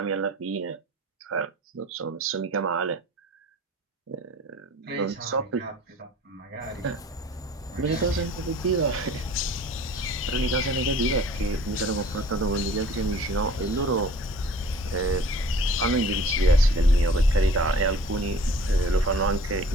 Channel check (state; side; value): normal; both; correlation 0.48